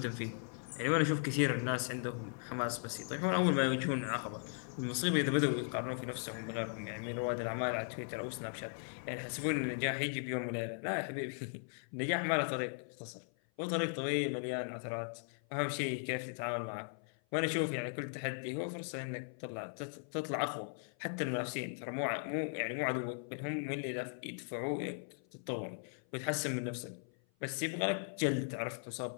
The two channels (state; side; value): silent; right; 52 dB below the other